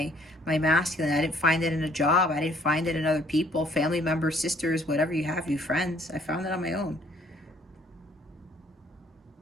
masculine. I didn't find it in a job. I didn't find it in other people, family members, sisters, whatever you have, you friends. I found it on my own.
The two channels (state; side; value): normal; both; correlation 0.61